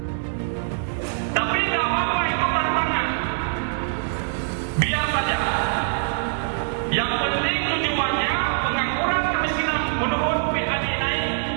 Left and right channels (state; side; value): silent; left; digital silence